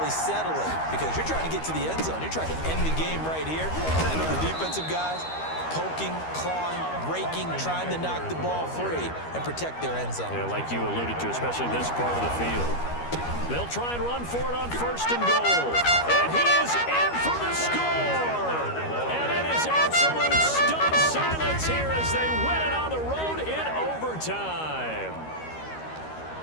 settle it because you're trying to get to the end zone. You're trying to end the game right here. And I know the defensive guys poking, clawing, raking, trying to knock the ball free and protect their end zone. Yeah, like you alluded to, especially this part of the field. They'll try and run for it on first and goal. And he is in for the score. And it is absolute stunned silence here as they win it on the road in overtime.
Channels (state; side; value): late; right; 13 ms